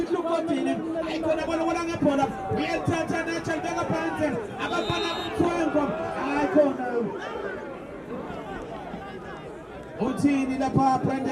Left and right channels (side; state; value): both; identical; correlation 1.00